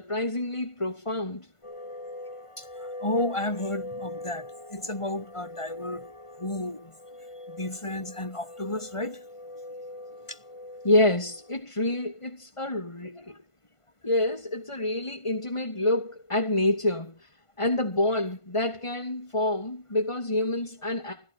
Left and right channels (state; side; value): late; right; 1.5 ms